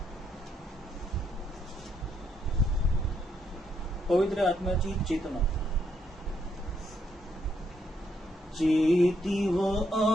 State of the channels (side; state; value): both; normal; correlation 0.75